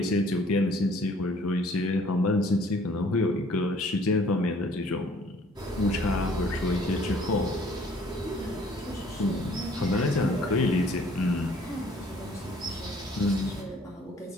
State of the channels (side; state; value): both; normal; correlation 0.57